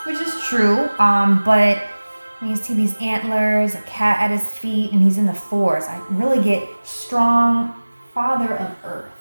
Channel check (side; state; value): both; inverted; correlation -1.00